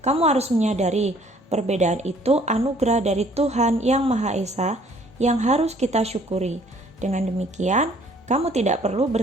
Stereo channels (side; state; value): both; normal; correlation 0.59